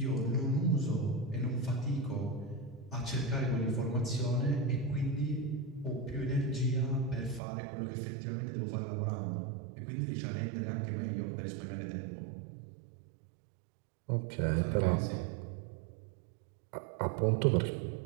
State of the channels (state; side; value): drops out; left; at 7.4 s